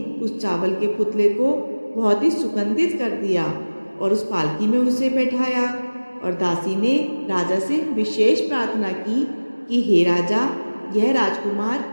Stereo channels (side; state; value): both; inverted; correlation -1.00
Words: उस चावल के पुतले को बहुत ही सुगंधित कर दिया और उस पालकी में उसे बैठाया। और दासी ने राजा से विशेष प्रार्थना की कि हे राजा, यह राजकुमार